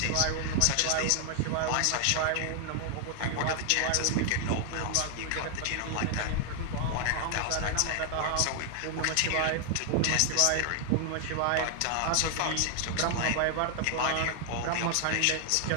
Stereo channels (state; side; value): different; both; correlation 0.00